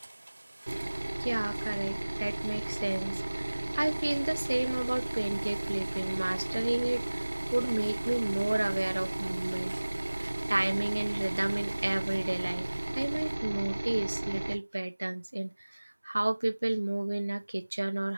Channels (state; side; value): inverted; both; correlation -1.00